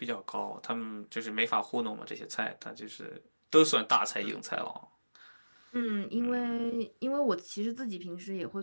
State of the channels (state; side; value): inverted; both; correlation -1.00